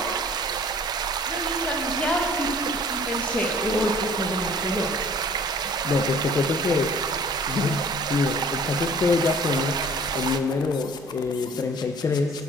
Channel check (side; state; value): both; normal; correlation 0.51